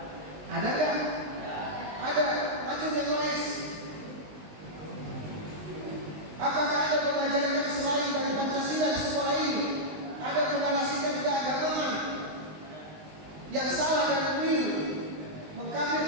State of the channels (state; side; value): late; left; 19 ms